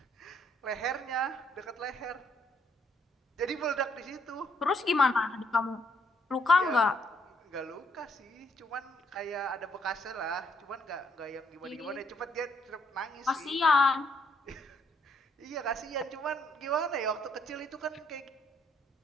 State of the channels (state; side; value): normal; both; correlation 0.71